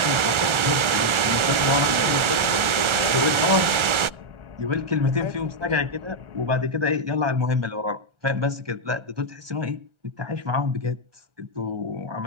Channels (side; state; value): left; late; 1.4 ms